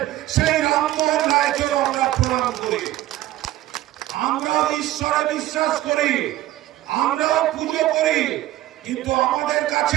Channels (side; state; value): left; quieter; 15.1 dB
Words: সেই রামমোহন রায়কেও আমরা প্রণাম করি। আমরা ঈশ্বরে বিশ্বাস করি, আমরাও পুজো করি, কিন্তু আমাদের